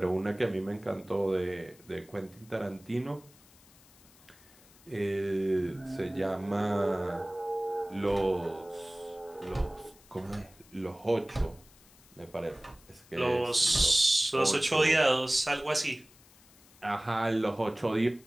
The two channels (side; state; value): left; noise; hiss, 26 dB below the sound